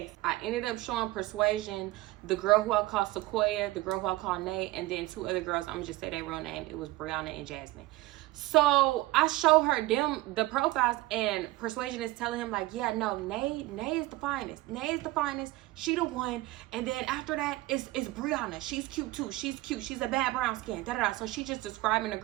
I ended up showing Persuasion, the girl who I call Sequoia, the girl who I call Nate, and then two other girls. I'm gonna just say their real name. It was Brianna and Jasmine. So I show her the profiles, and Persuasion is telling him like, yeah, no, Nay is the finest. Nay is the finest. She the one. And then after that is Brianna. She's cute too. She's cute. She's a bad brown skin. Da da da. So she just describing the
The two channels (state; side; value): quieter; left; 18.7 dB